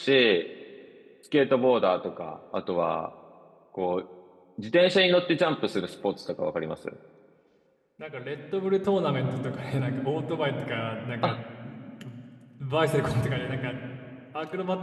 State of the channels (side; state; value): both; identical; correlation 1.00